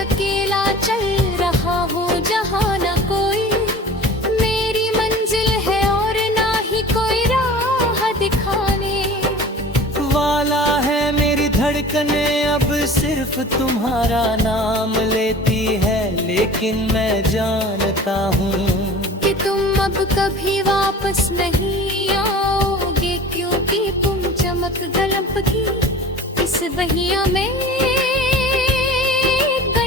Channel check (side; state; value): both; normal; correlation 0.40